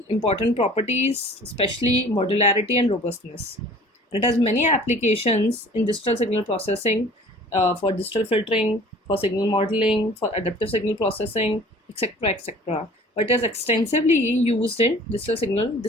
important properties, especially modularity and robustness. It has many applications in digital signal processing, for digital filtering, for signal modeling, for adaptive signal processing, etc., etc. But it is extensively used in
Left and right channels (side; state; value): both; normal; correlation 0.48